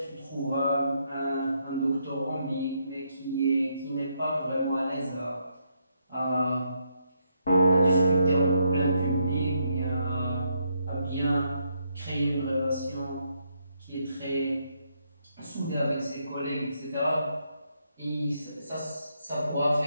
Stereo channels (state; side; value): inverted; both; correlation -0.77